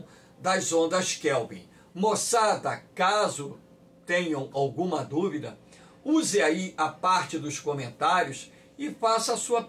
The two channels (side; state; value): both; identical; correlation 1.00